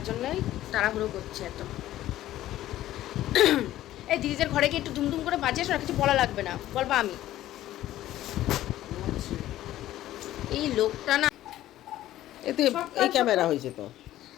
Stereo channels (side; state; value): right; quieter; 14.0 dB